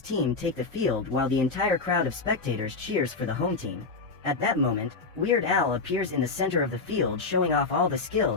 take the field while the entire crowd of spectators cheers for the home team. At that moment, Weird Al appears in the center of the field showing off all the skill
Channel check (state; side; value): quieter; right; 4.1 dB